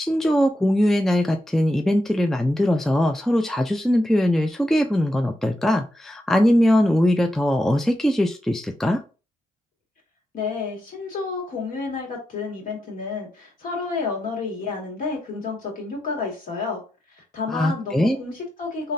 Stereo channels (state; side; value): normal; both; correlation 0.87